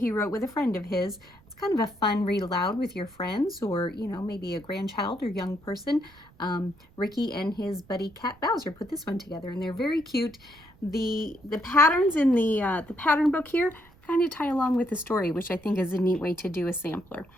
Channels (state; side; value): noise; right; rumble, 27 dB below the sound